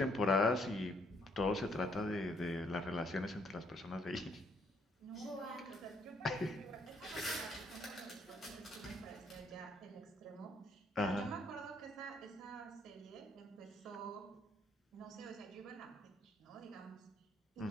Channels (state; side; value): normal; both; correlation 0.68